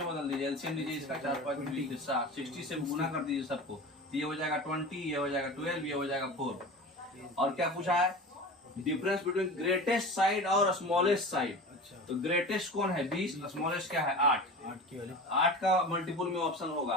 बदल दीजिए? एलसीएम लीजिए इसका 4 5 20 60 से गुना कर दीजिए सबको। ये हो जाएगा 20, ये हो जाएगा 12, ये हो जाएगा 4। और क्या पूछा है? डिफरेंस बिटवीन ग्रेटेस्ट साइड और स्मॉलेस्ट साइड। अच्छा, तो ग्रेटेस्ट कौन है? 20, स्मॉलेस्ट क्या है? 8 की वाली 8 का मल्टीपुल में ऑप्शन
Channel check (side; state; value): both; normal; correlation 0.33